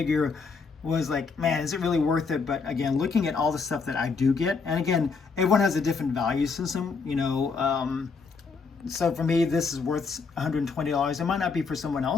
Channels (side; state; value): right; quieter; 4.9 dB